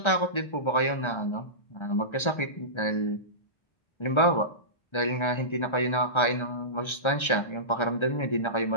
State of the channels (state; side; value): late; right; 1.3 ms